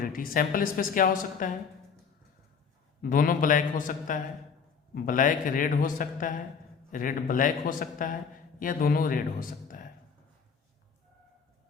सैंपल स्पेस क्या हो सकता है, दोनों ब्लैक हो सकता है, ब्लैक रेड हो सकता है, रेड ब्लैक हो सकता है, या दोनों रेड हो सकता है।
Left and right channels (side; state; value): right; quieter; 6.1 dB